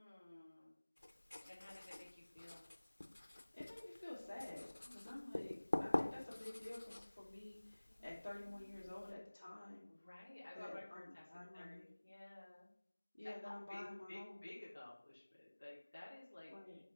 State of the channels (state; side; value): inverted; both; correlation -1.00